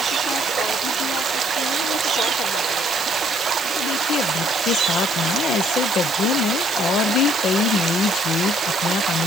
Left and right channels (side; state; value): left; noise; hiss, 12 dB below the sound